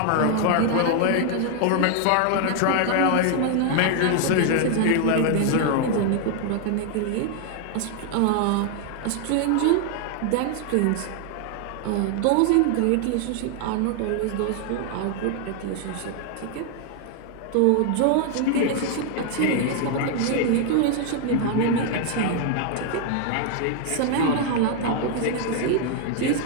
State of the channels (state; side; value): different; both; correlation 0.00